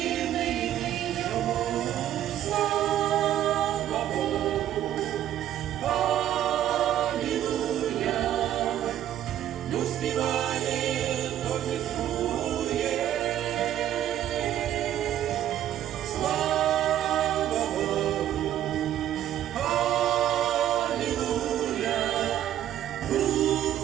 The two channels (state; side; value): quieter; left; 11.7 dB